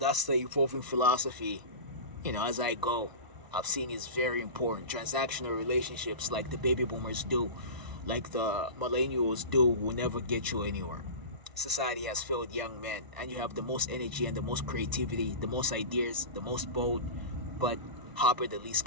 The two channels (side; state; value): left; late; 1.0 ms